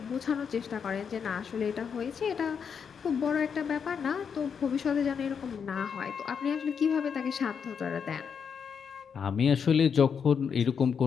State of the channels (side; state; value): right; quieter; 6.8 dB